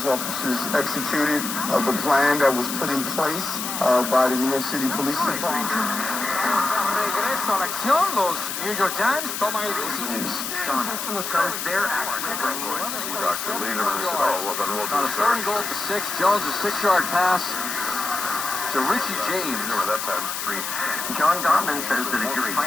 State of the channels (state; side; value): noise; left; hiss, 4 dB below the sound